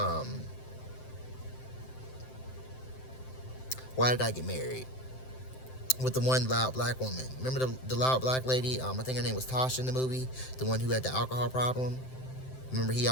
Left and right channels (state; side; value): late; right; 7.7 ms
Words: Why Did I Get Married? With the one loud black woman. Remember the loud black lady? I think her name was Tasha in the movie. The one who had the alcohol problem. Remember he